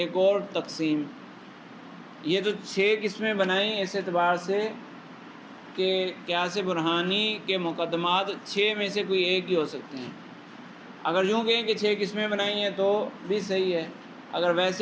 اور تقسیم۔ یہ تو 6 قسمیں بنائیں اس اعتبار سے کہ قیاس برہانی کے مقدمات 6 میں سے کوئی ایک ہی ہو سکتے ہیں۔ اگر یوں کہیں کہ 6 قسمیں بنائی ہیں تو بھی صحیح ہے، اگر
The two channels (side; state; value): both; identical; correlation 1.00